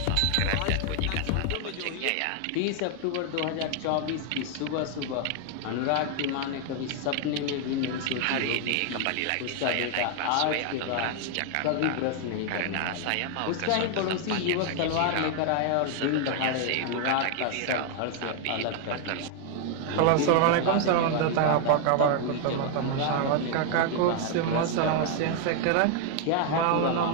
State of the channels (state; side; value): different; both; correlation 0.00